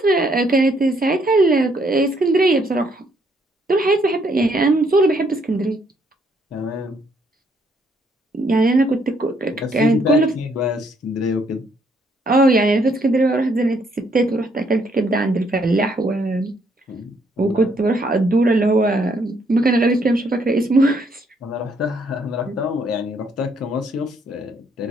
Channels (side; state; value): both; normal; correlation 0.70